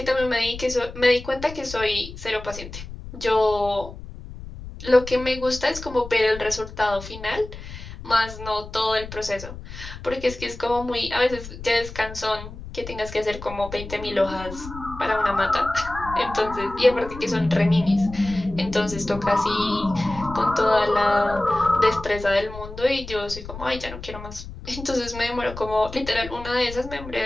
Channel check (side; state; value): left; noise; rumble, 12 dB below the sound